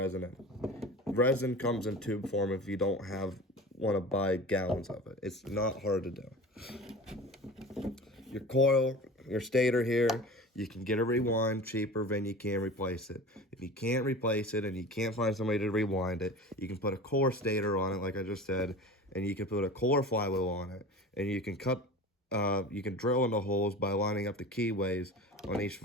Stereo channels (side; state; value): both; normal; correlation 0.35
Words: in. Resin comes in tube form if you don't want to buy gallons of it. It's not hard to do. Your coil, your stator here, you can get a rewind cheaper than you can replace it. If you can't replace it and you can't find somebody to rewind it, you can put a core stator on it, like I just said, and you can put a core flywheel on it, and you can you can drill into holes by lining up the keyways on each